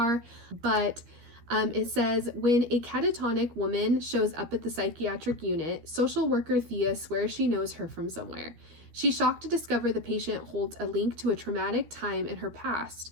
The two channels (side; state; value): left; late; 13 ms